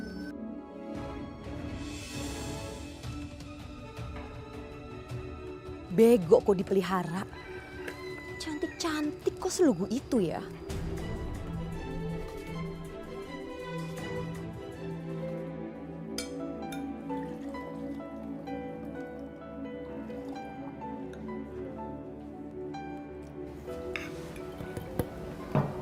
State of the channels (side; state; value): both; identical; correlation 1.00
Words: Bego kok dipelihara. Cantik-cantik kok selugu itu ya.